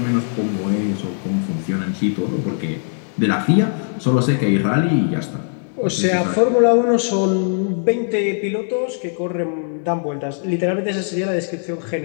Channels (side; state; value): right; silent; digital silence